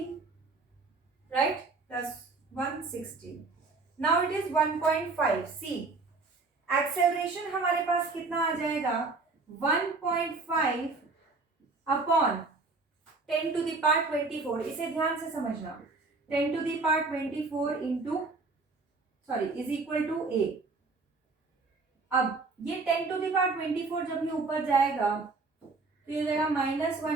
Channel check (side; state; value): left; quieter; 3.8 dB